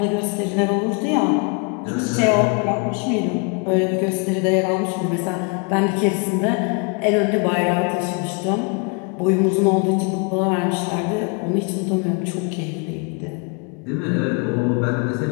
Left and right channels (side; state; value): right; quieter; 34.8 dB